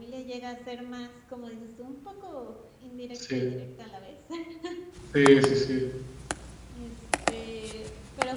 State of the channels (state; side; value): identical; both; correlation 1.00